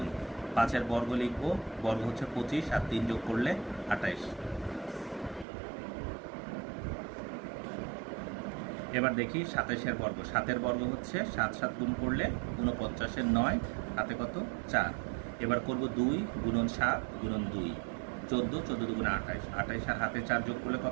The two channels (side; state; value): left; drops out; at 5.5 s